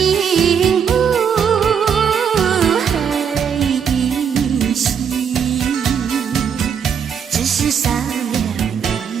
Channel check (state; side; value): quieter; left; 7.4 dB